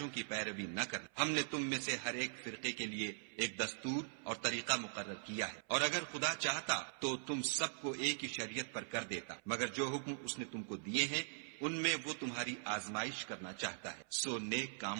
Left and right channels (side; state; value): left; silent; 50 dB below the other